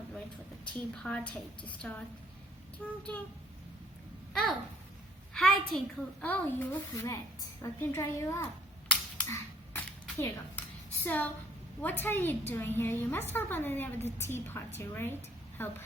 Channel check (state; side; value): normal; both; correlation 0.61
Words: wait for the tea party to start. Ding, ding. Oh, hi Tinkle. Oh, you look wet. Let me dry you up. Here you go. So, what are you doing here? You must help Ananya with the tea party, right? Help